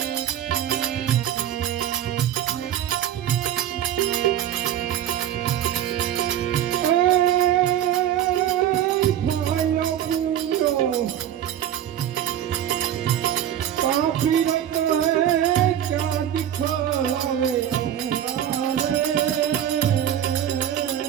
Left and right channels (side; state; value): left; quieter; 10.8 dB